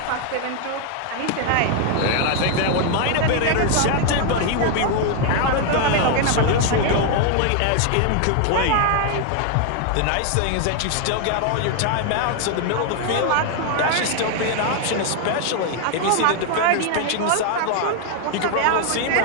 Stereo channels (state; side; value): different; both; correlation 0.00